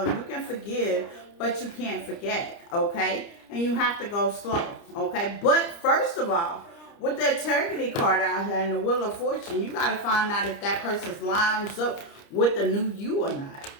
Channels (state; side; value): late; right; 30 ms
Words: you can forgive, but you can't forget, okay? And you have to go slow, okay? But first of all, with the Integrity card out here and the Wheel of Fortune, you got to find out if that person's lines up with the new you or not.